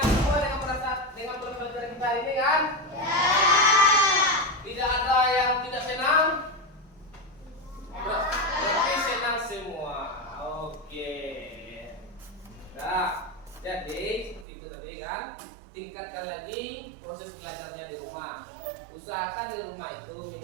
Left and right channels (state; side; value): drops out; left; at 14.5 s